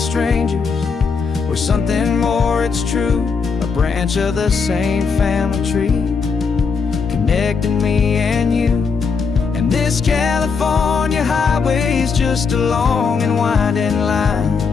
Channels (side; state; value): right; quieter; 5.3 dB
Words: we're something more, it's true, a branch of the same family tree, connecting me and you. And this California highway is just a long and winding line,